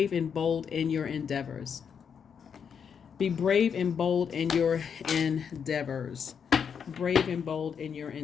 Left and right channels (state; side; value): quieter; right; 7.1 dB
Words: and bold in your endeavors. Be brave and bold in your endeavors. Brave and bold in your